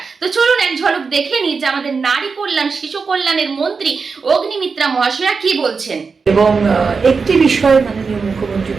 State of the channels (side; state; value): left; quieter; 5.0 dB